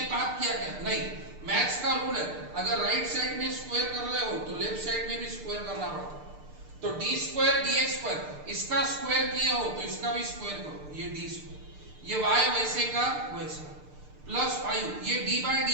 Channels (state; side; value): late; left; 6.7 ms